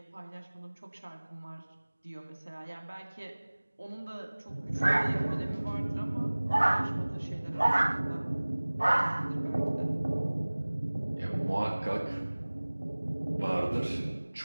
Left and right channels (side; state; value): both; inverted; correlation -1.00